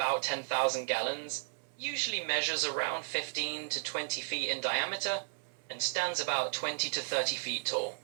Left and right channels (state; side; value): silent; left; 55 dB below the other